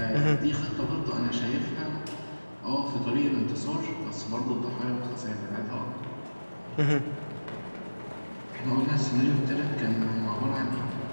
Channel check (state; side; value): inverted; both; correlation -1.00